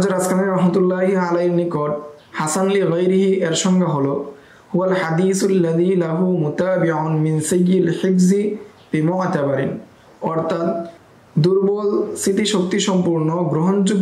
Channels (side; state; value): both; identical; correlation 1.00